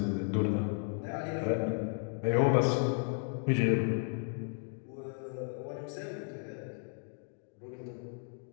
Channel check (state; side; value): silent; right; 55 dB below the other